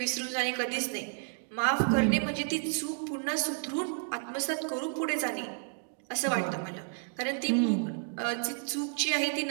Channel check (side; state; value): left; silent; 57 dB below the other